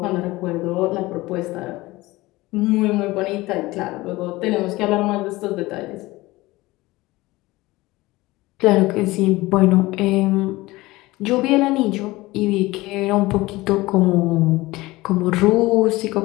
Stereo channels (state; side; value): quieter; right; 19.8 dB